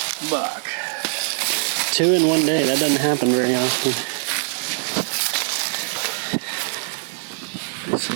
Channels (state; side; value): silent; left; 64 dB below the other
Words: buck. 2 in one day. That doesn't happen very often. It's an